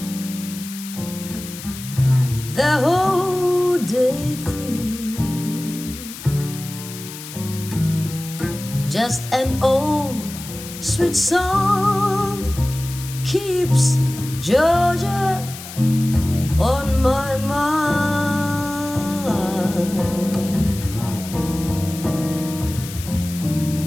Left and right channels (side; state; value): left; noise; hiss, 12 dB below the sound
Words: the whole day through, just an old sweet song keeps Georgia on my mind.